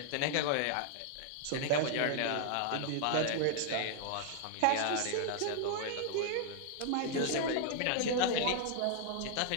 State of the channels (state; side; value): different; both; correlation 0.00